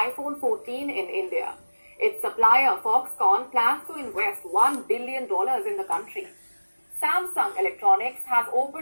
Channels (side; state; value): both; inverted; correlation -1.00